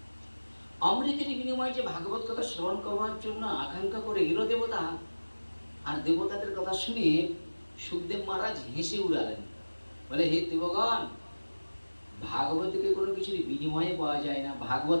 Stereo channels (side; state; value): both; inverted; correlation -1.00